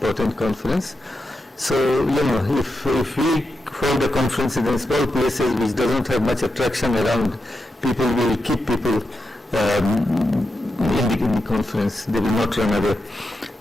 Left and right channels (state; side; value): normal; both; correlation 0.87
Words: conference. So, you know, if we hold a conference in small places which doesn't have much attraction around, people will keep people in the conference. They will not run away.